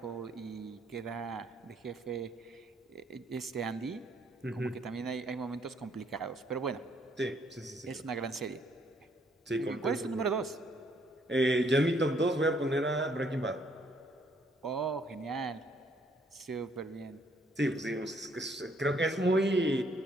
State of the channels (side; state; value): both; normal; correlation 0.68